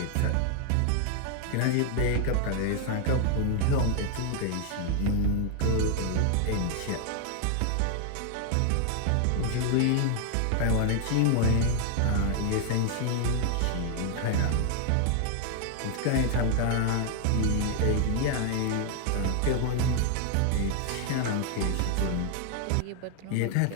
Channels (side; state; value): both; different; correlation 0.00